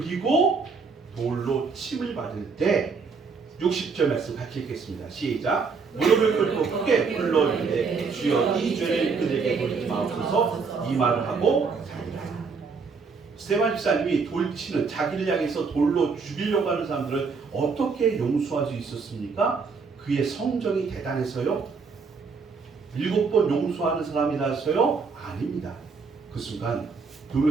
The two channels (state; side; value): quieter; left; 4.9 dB